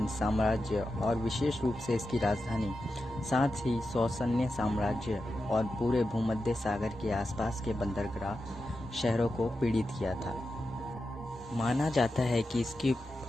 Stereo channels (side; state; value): both; normal; correlation 0.90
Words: साम्राज्य और विशेष रूप से इसकी राजधानी, साथ ही सौसन्य साम्राज्य और पूरे भूमध्य सागर के आसपास के बंदरगाह शहरों को पीड़ित किया था। माना जाता है कि इसकी